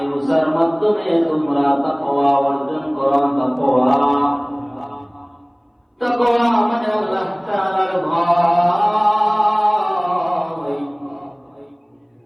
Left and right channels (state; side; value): identical; both; correlation 1.00